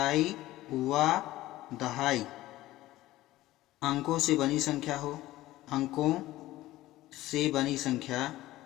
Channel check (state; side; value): quieter; right; 16.3 dB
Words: व दहाई अंकों से बनी संख्या हो। अंकों से बनी संख्या